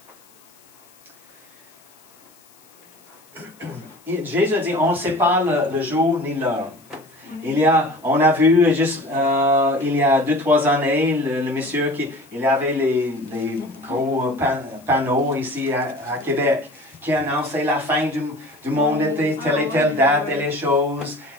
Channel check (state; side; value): noise; left; hiss, 29 dB below the sound